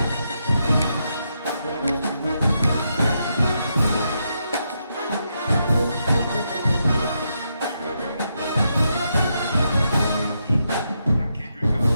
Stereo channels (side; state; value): both; inverted; correlation -0.82